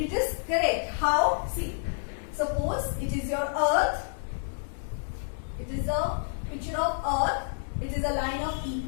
is correct. How? See, suppose it is your earth. It is a picture of earth. It is a line of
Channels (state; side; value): silent; right; digital silence